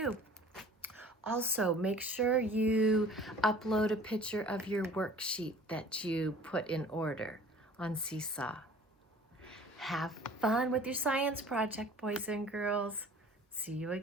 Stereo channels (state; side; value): normal; both; correlation 0.48